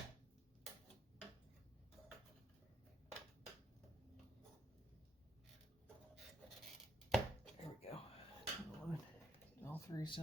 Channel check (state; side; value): normal; both; correlation 0.76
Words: There we go. All three